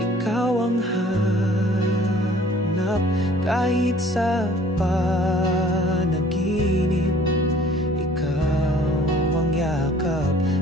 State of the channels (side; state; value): both; normal; correlation 0.53